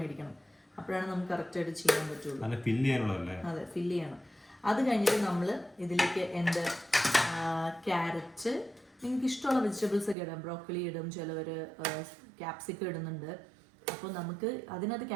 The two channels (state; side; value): drops out; left; at 10.2 s